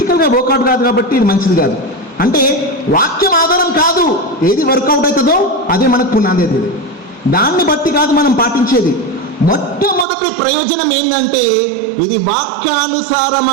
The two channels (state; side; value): drops out; left; at 10.1 s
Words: వర్కౌట్ కాదు కాబట్టి ఇది మంచిది కాదు. అంటే వాక్యం ఆధారం కాదు, ఏది వర్కౌట్ అవుతుందో అదే మనకు పునాది. దాన్ని బట్టి కాదు మనం పాటించేది. మొట్టమొదటి ప్రయోజనం ఏంటంటే ఇది